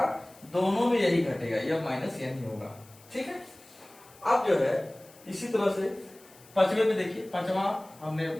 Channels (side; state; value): left; noise; hiss, 25 dB below the sound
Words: दोनों में यही घटेगा, यह माइनस यह नहीं होगा। ठीक है, अब जो है इसी तरह से पांचवे में देखिए, पांचवा हमने